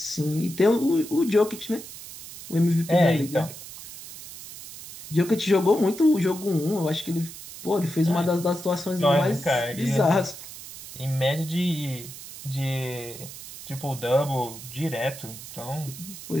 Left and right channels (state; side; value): noise; right; hiss, 14 dB below the sound